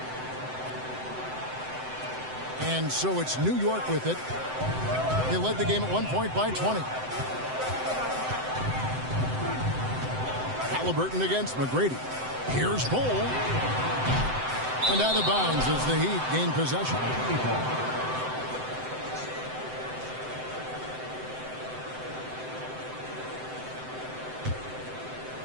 And so it's New York with it. They led the game at 1 point by 20. Halliburton against McGrady. Here's Bol. And out of bounds as the Heat gain possession.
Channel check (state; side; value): late; left; 7.8 ms